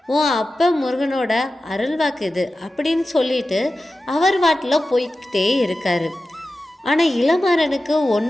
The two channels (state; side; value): normal; both; correlation 0.94